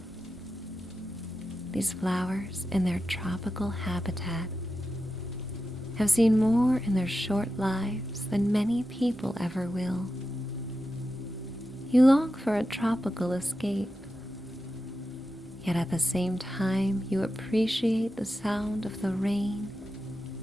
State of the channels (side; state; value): both; normal; correlation 0.90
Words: These flowers in their tropical habitat have seen more in their short lives than many people ever will. You long for a tropical escape, yet at the same time you appreciate the sound of the rain